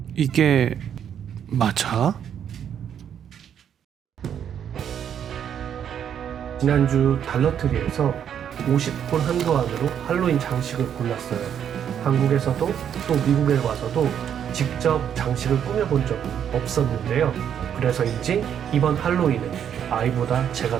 이게 맞아? 지난주 달러트리에서 50불 한도 안으로 할로윈 장식을 골랐어요. 한국에서도 또 미국에 와서도 직접 장식을 꾸며본 적은 없었는데요. 그래서인지 이번 할로윈은 아이보다 제가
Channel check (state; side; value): quieter; left; 8.9 dB